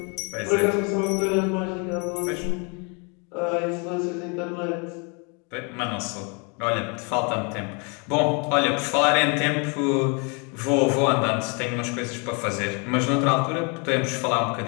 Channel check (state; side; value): quieter; right; 33.7 dB